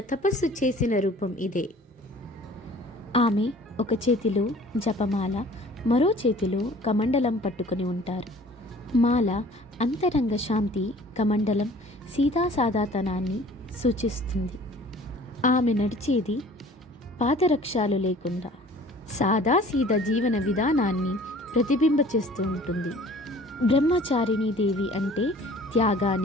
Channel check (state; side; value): normal; both; correlation 0.49